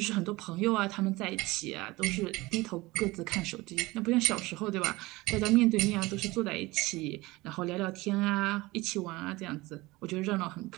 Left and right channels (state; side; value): quieter; left; 21.0 dB